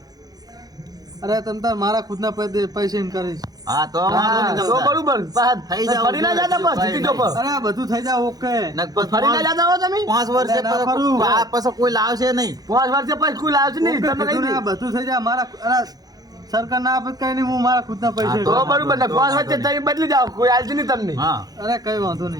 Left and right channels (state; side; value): late; left; 0.19 ms